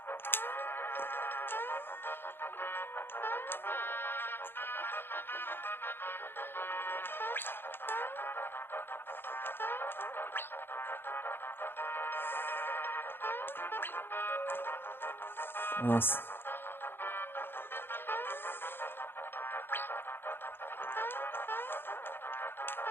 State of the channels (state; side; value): late; right; 0.10 ms